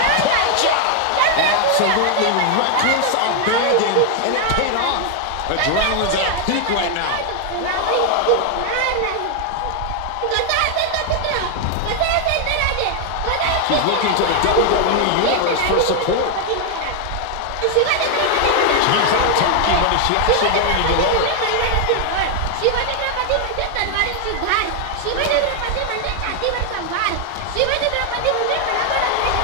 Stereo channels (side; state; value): both; different; correlation 0.00